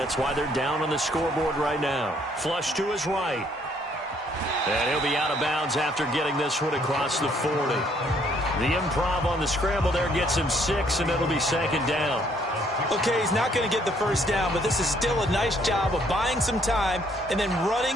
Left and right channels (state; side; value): normal; both; correlation 0.66